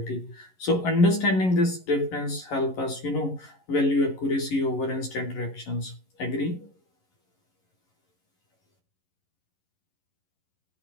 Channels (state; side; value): late; right; 11 ms